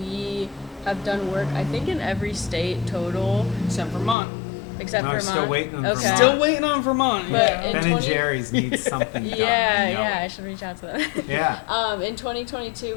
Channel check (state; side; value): drops out; right; at 4.2 s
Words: have done work, I think, in every state total, Except Vermont. except No, Vermont. still waiting on Okay. Vermont. Still waiting on Vermont. But yeah. in Ben 20 and Jerry's needs something done. Yeah, I should reach out to them. Yeah. In 2022,